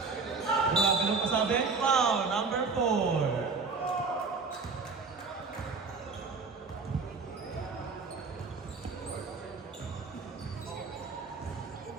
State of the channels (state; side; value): quieter; left; 4.5 dB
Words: Grabe nung pasabi. Foul, number 4.